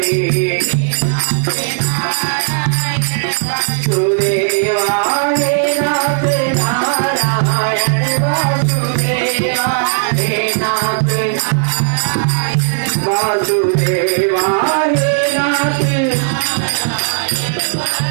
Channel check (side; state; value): left; silent; digital silence